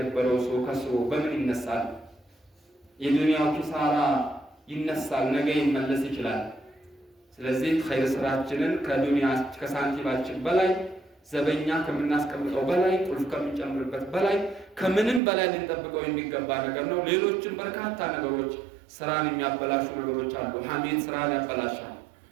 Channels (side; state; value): left; drops out; at 15.2 s